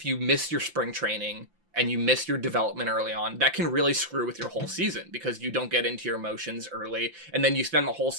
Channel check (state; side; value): late; left; 5.8 ms